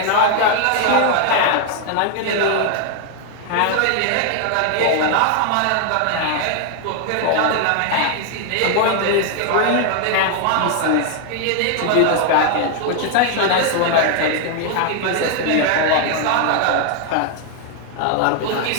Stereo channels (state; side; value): different; both; correlation 0.00